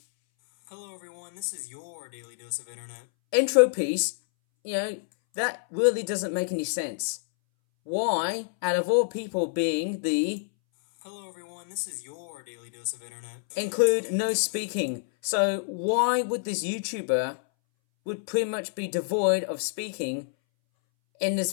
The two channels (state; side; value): silent; right; 60 dB below the other